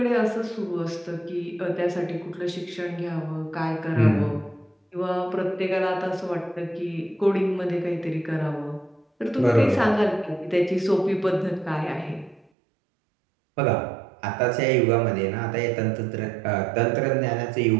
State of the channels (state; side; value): drops out; left; at 12.5 s